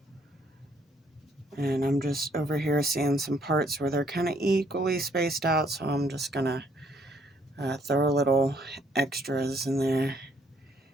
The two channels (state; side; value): normal; both; correlation 0.67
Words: And I'm just over here seeing some parts where they're kind of equally spaced out, so I'm just gonna throw a little extras in there.